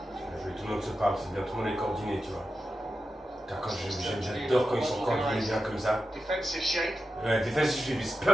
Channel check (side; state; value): both; normal; correlation 0.91